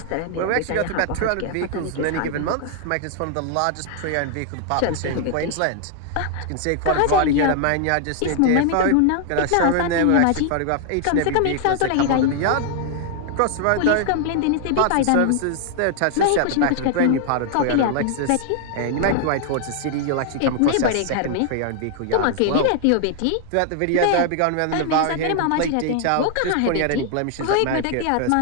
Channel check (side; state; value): both; different; correlation 0.00